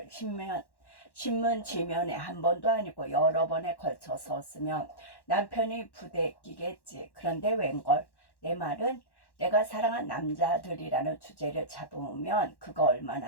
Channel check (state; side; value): late; right; 1.1 ms